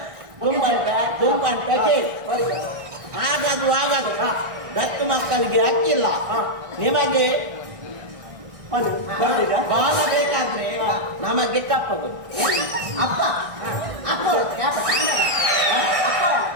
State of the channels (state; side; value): late; left; 1.4 ms